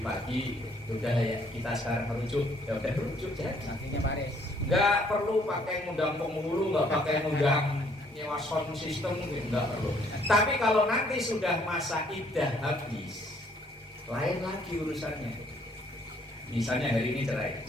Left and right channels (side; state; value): both; normal; correlation 0.64